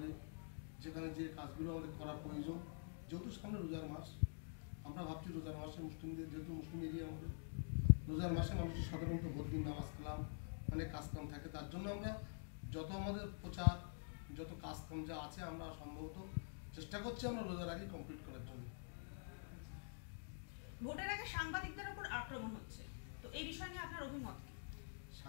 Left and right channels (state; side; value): silent; right; digital silence